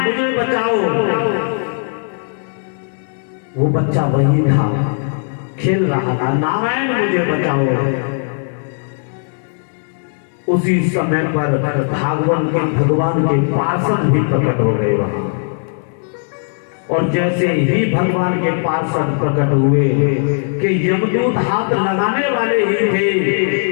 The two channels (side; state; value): right; silent; digital silence